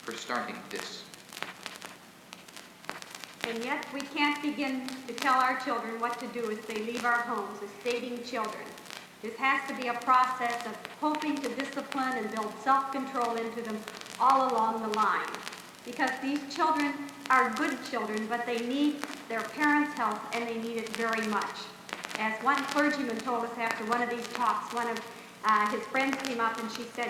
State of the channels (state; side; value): identical; both; correlation 1.00